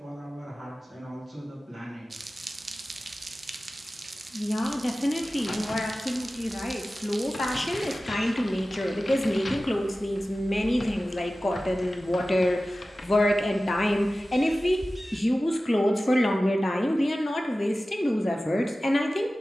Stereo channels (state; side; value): normal; both; correlation 0.96